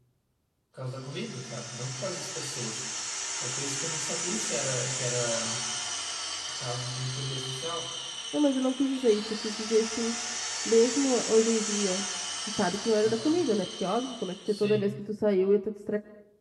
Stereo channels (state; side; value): identical; both; correlation 1.00